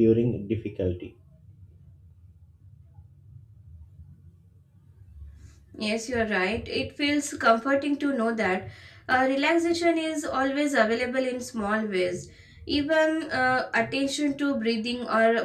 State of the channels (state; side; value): identical; both; correlation 1.00